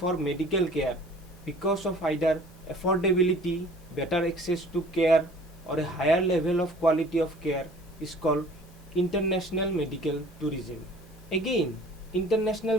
medical care because of either affordability, better access to care or a higher level of quality of care, is called international medical tourism. Again,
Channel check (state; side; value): normal; both; correlation 0.49